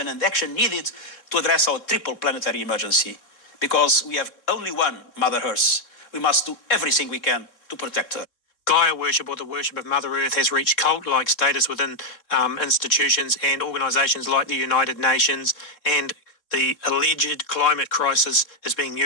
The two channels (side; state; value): right; late; 3.7 ms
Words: and action needed to address our triple planetary emergency. Because we have only one Mother Earth. We must do everything we can to protect her. Gaia worship, or the worship of Mother Earth, has reached cult-like status within institutions and organisations like the United Nations, and the alleged climate crisis is being